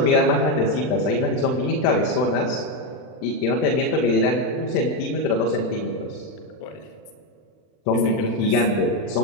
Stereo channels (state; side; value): late; right; 39 ms